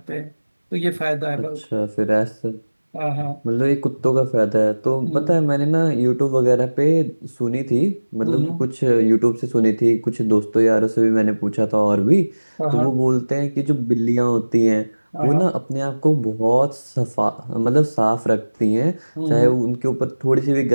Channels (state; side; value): inverted; both; correlation -1.00